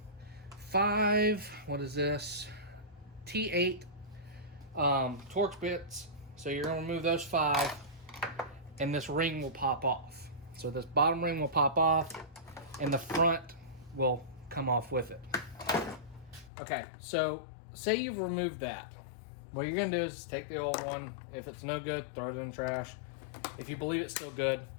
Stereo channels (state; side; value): drops out; right; at 16.5 s